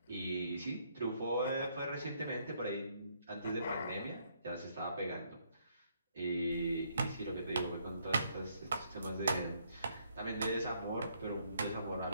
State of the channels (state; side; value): inverted; both; correlation -0.70